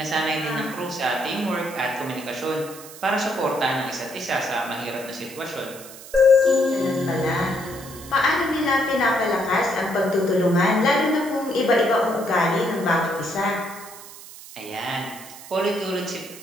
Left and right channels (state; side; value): noise; right; hiss, 16 dB below the sound